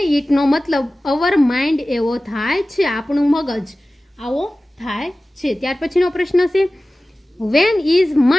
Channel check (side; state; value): both; normal; correlation 0.97